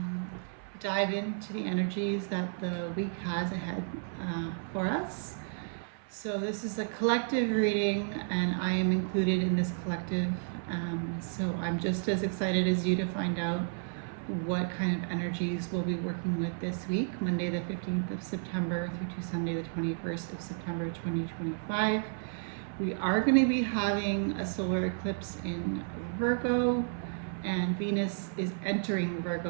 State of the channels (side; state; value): left; silent; 56 dB below the other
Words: dive into the energies that the week has ahead for us. So this is a collective reading and I am included in this collective. So I'm just as excited as you to find out what kind of energies we'll be working with this week, Monday the 15th of September through to Sunday the 21st of September 2025. We are going to be having a solar eclipse in Virgo, and Venus is entering